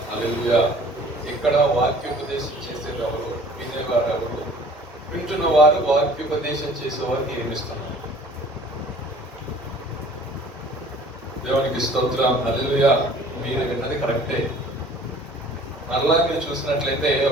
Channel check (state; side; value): normal; both; correlation 0.50